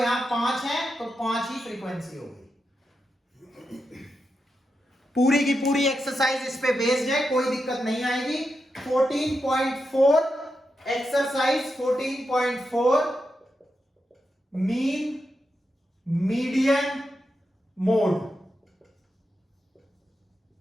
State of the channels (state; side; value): normal; both; correlation 0.87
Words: 5 है तो 5 ही फ्रीक्वेंसी होगी। पूरी की पूरी एक्सरसाइज इस पे बेस्ड है, कोई दिक्कत नहीं आएगी। 14.4 exercise 14.4 mean median mode.